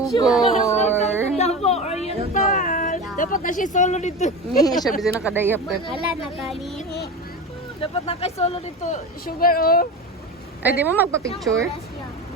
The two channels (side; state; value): both; normal; correlation 0.27